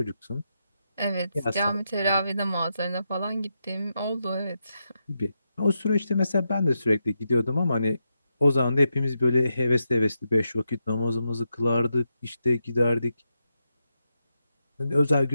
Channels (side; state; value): both; inverted; correlation -0.85